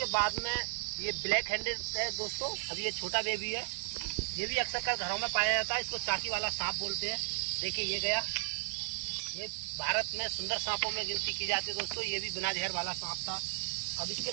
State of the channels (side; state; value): left; silent; 55 dB below the other